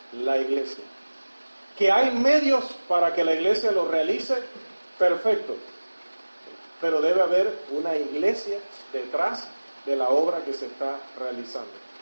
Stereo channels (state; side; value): inverted; both; correlation -1.00